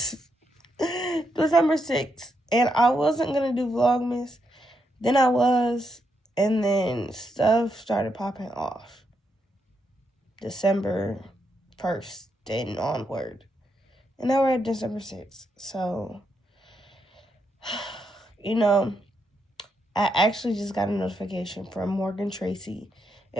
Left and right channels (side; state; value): both; normal; correlation 0.80